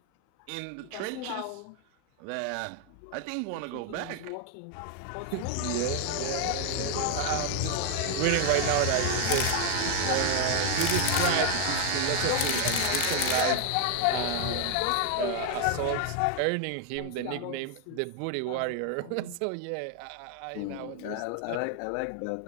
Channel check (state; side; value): different; both; correlation 0.00